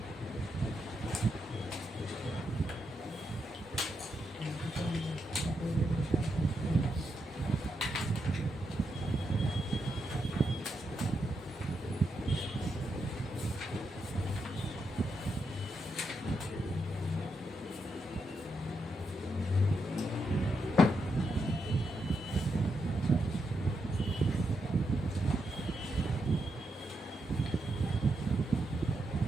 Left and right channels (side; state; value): both; normal; correlation 0.83